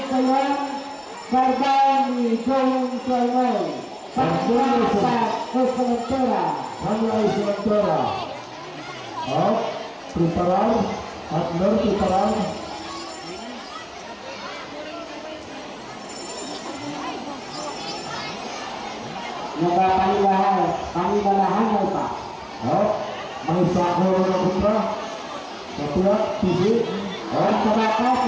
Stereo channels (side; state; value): both; identical; correlation 1.00